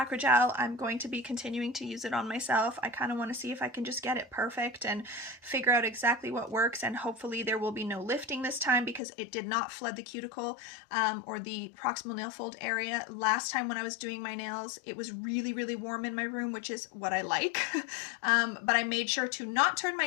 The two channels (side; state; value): right; drops out; at 9.0 s